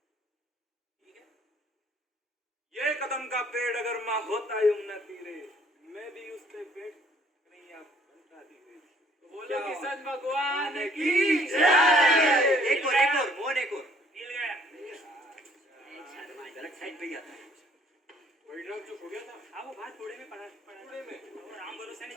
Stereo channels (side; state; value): both; normal; correlation 0.61